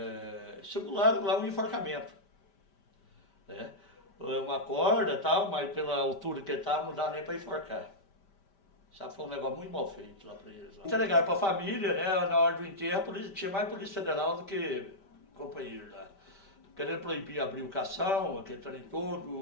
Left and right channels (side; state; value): right; late; 5.1 ms